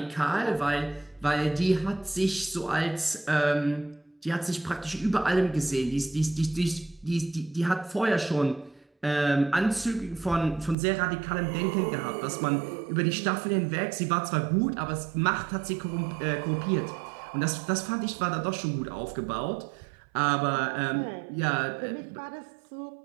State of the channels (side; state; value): left; drops out; at 10.8 s